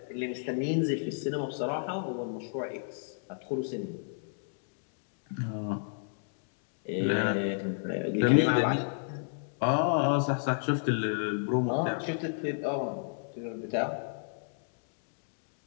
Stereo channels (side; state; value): right; silent; digital silence